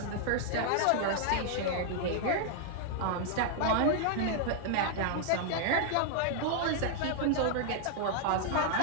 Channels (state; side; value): different; both; correlation 0.00